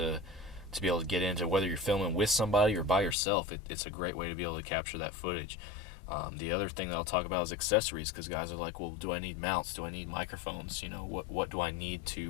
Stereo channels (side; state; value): right; drops out; at 3.2 s